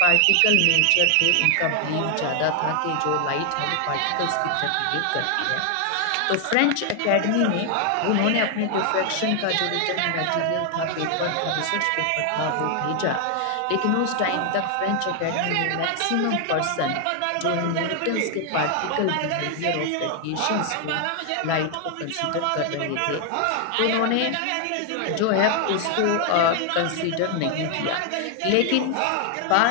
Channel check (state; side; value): different; both; correlation 0.00